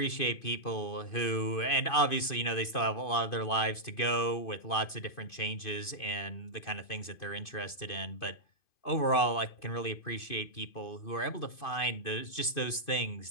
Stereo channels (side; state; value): right; late; 2.5 ms